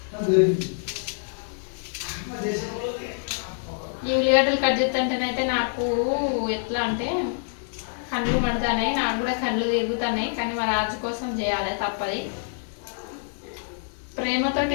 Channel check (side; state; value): right; silent; digital silence